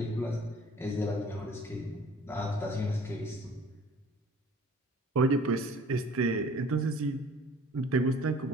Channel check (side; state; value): both; normal; correlation 0.50